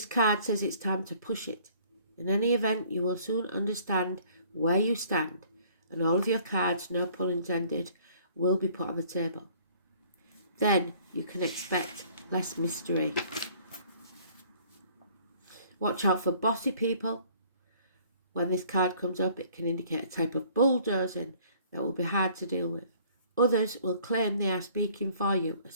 card says it's time to push it. In any event, you will soon understand where you stand, and all of your cards, no pun intended, will be put on the table. Then you can expect less mystery. Watch out for bossy people. When this card comes up, it can indicate a type of bulldozing that will be hard to deal with. Others will claim they are speaking for you,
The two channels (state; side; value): inverted; both; correlation -0.56